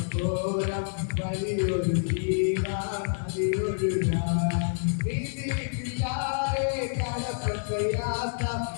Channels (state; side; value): silent; right; 59 dB below the other